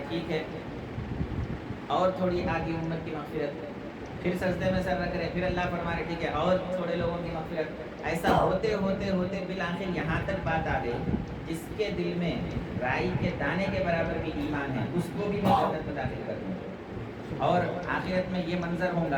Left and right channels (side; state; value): both; identical; correlation 1.00